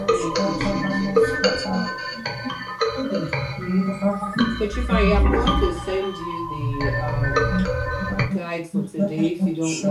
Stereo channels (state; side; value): identical; both; correlation 1.00